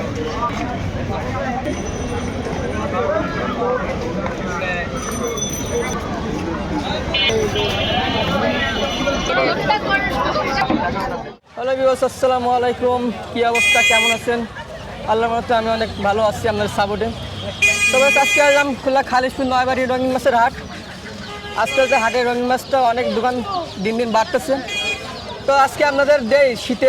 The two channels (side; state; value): both; identical; correlation 1.00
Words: viewers, আসসালামু আলাইকুম। কী অবস্থা, কেমন আছেন? আল্লাহর রহমতে আমি অনেক ভালো আছি আপনাদের সাপোর্টে। তবে আজকে আসলাম খুলনা খালিশপুর নয়বাড়ি রঙিন মাছের হাট। আজকে হাটের রঙিন মাছটা অনেক দোকান দিন দিন বাড়তেছে। তো আজকে আপনাদের দেই শীতে